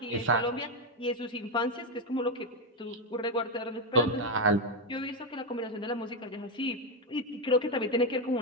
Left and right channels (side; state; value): both; normal; correlation 0.07